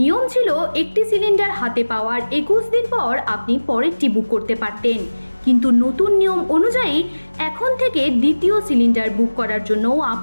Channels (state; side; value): inverted; both; correlation -1.00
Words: ছিল একটি সিলিন্ডার হাতে পাওয়ার 21 দিন পর আপনি পরেরটি বুক করতে পারতেন, কিন্তু নতুন নিয়ম অনুযায়ী এখন থেকে দ্বিতীয় সিলিন্ডার বুক করার জন্য